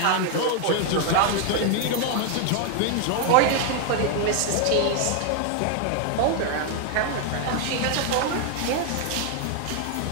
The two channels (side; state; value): both; different; correlation 0.01